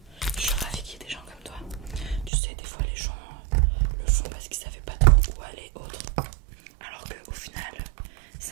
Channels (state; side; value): drops out; left; at 2.3 s